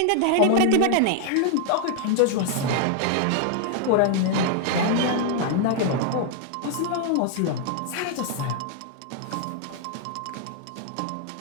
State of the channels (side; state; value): both; different; correlation 0.00